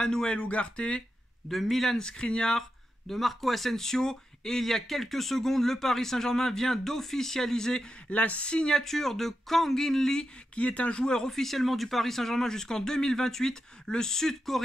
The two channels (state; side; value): normal; both; correlation 0.88